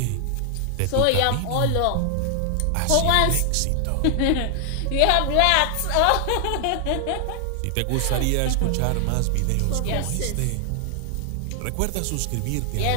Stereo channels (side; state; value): both; different; correlation 0.00